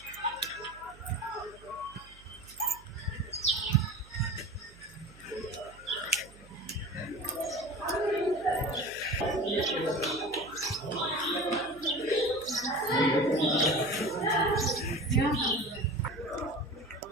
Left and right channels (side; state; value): right; noise; hum, 22 dB below the sound